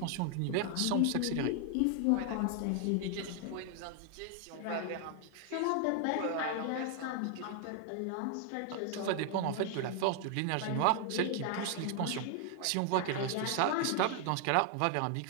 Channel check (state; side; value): different; both; correlation 0.00